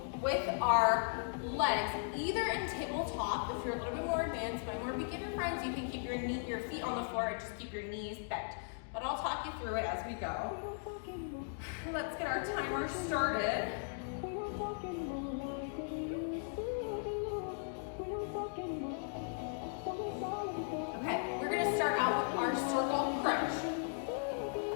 with our legs, either in tabletop, if you're a little bit more advanced. My more beginner friends, you can keep your feet on the floor and just keep your knees bent. But I'll talk you through it as we go. Let's get our timer started. Okay, we're gonna start out with our circle crunch.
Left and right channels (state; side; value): silent; right; digital silence